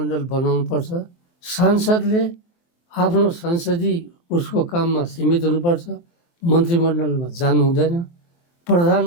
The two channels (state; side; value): late; right; 23 ms